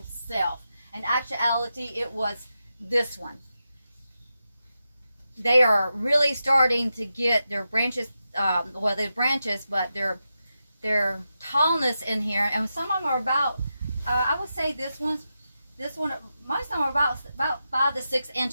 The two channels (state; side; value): inverted; both; correlation -0.89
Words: self. In actuality, it was this one. They are really starting to get their branches, well, they're branches, but their tallness in here, and some of them are about, I would say this one, most of them are about 5 to 6